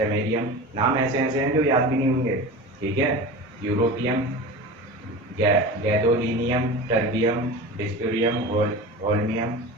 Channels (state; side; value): normal; both; correlation 0.31